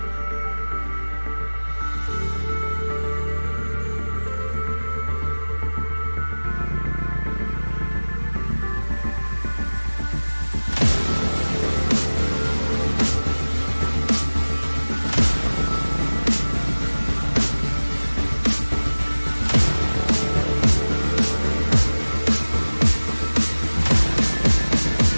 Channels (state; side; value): inverted; both; correlation -1.00